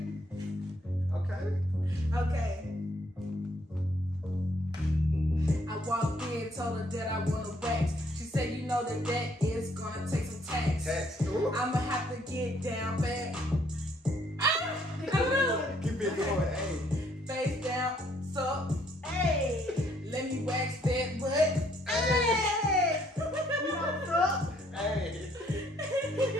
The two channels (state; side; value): normal; both; correlation 0.67